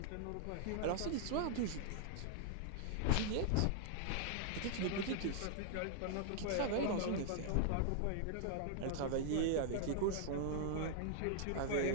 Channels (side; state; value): both; different; correlation -0.01